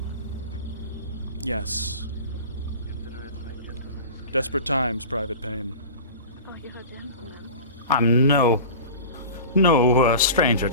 Yes. Desperate times, Private Payne. Oh, you're a gentleman. I'm no stranger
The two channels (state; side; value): inverted; both; correlation -0.35